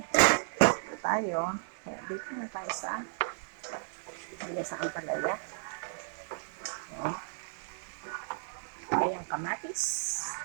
Dito tayo. Dito na tayo sa sa ampalaya. Ayan. Ayan, kamatis.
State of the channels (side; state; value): left; silent; 55 dB below the other